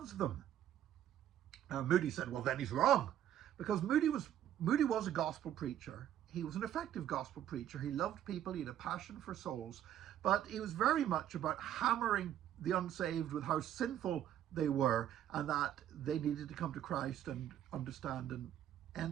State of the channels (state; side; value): quieter; left; 11.1 dB